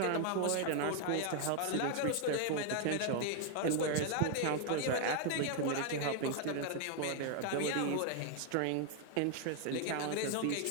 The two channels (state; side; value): different; both; correlation 0.00